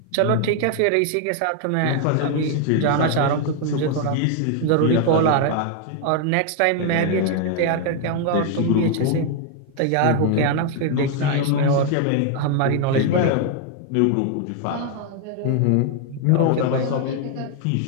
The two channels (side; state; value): both; different; correlation 0.00